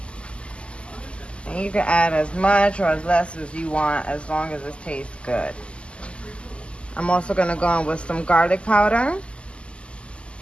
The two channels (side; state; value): right; late; 0.053 ms